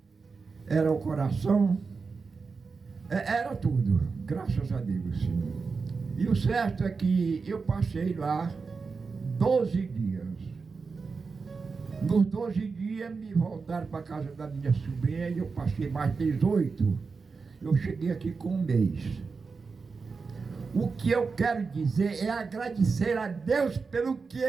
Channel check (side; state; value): left; quieter; 4.7 dB